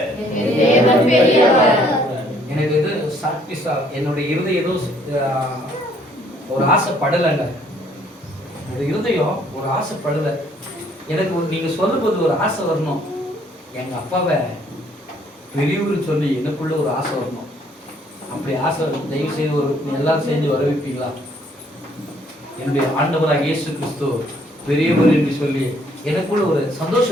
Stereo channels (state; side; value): normal; both; correlation 0.63